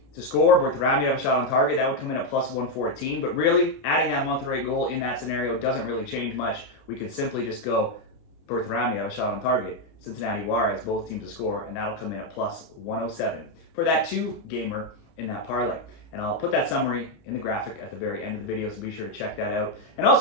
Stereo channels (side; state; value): right; late; 30 ms